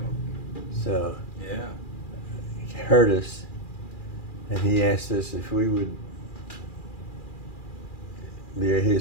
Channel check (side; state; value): right; late; 2.4 ms